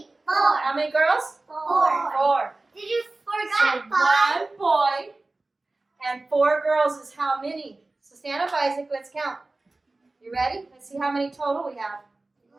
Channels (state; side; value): quieter; left; 3.1 dB